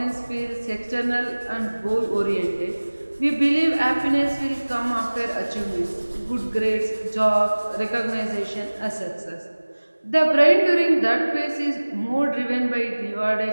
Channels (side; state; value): both; inverted; correlation -1.00